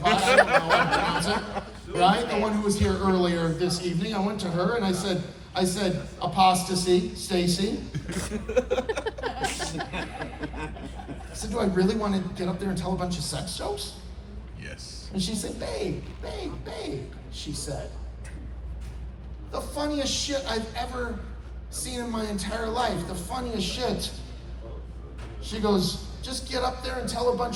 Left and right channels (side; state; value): both; identical; correlation 1.00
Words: I don't know how to pronounce it, right? The one who was here earlier this evening. I went to her and I said, apostasy, Stacie. I said, do I really want to get up there and tell a bunch of sex jokes? Yes. And she said, babe, she said, the funniest shit I've ever seen in my entire life, the funniest shit. She goes, just get up there and tell a